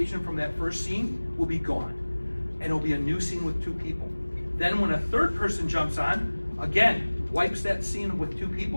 from that first scene will be gone. And it'll be a new scene with 2 people. Then when a third person jumps on, again, wipes that scene with 2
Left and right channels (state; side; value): inverted; both; correlation -1.00